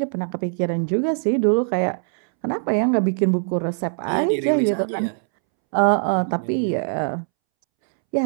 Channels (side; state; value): left; silent; 65 dB below the other